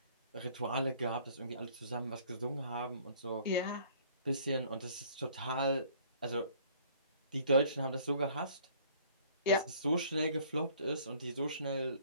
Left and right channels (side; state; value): both; inverted; correlation -0.56